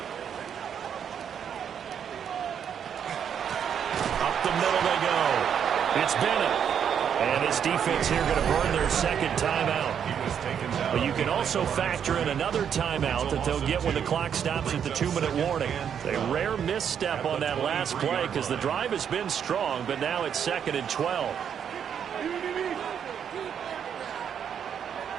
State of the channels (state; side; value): quieter; left; 8.2 dB